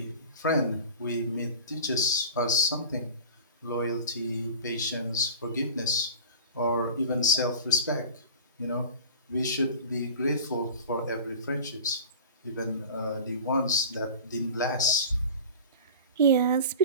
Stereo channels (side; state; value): both; inverted; correlation -0.37